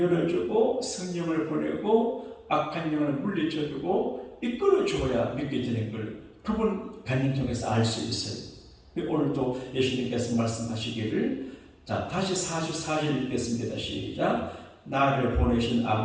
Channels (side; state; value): both; identical; correlation 1.00